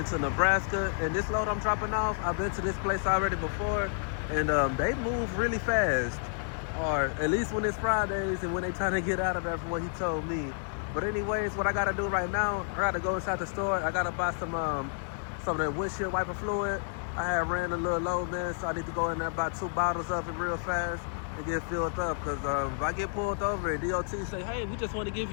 Nebraska, and this load I'm dropping off, I've been to this place already before, and they move really fast, or at least when it's Fridays and when they trying to get out of there from what he told me. But anyways, what I gotta do right now, I gotta go inside the store. I gotta buy some of that windshield wiper fluid. I had ran a little low, man, so I need to go in there buy 2 bottles of it real fast and get filled up, because if I get pulled over and DOT say, hey, we just want to give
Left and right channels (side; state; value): right; silent; digital silence